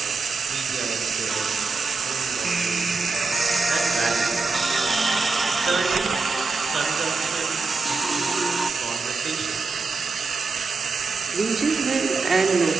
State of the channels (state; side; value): quieter; left; 4.2 dB